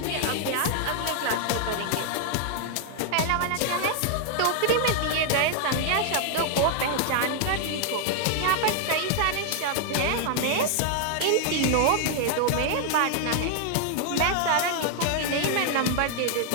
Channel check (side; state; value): both; different; correlation 0.00